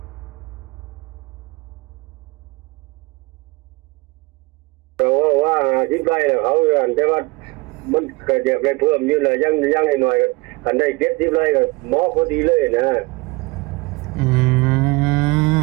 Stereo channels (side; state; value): left; quieter; 24.5 dB